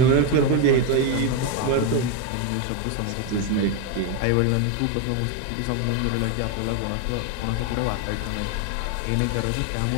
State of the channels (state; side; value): different; both; correlation 0.02